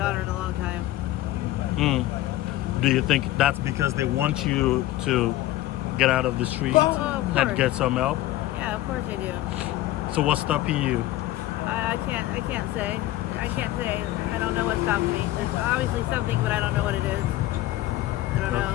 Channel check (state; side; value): quieter; right; 15.6 dB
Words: in a long time. Do you think that's because they want you to get out of the streets of and course. get some help? Yeah, of course I do. So what's stopping you? I can't say. I can't say. I don't know what's stopping me. There's obviously something, but I don't know what it is. I don't